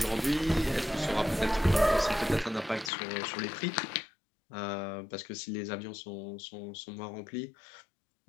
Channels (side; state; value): right; drops out; at 2.9 s